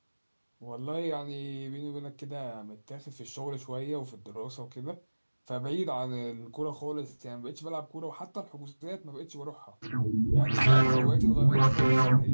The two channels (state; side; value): inverted; both; correlation -1.00